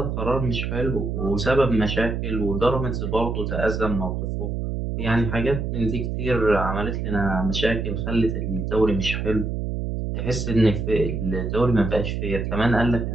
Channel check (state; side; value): noise; right; hum, 2 dB below the sound